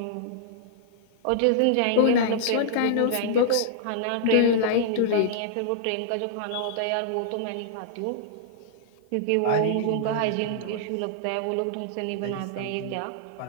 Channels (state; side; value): different; both; correlation -0.02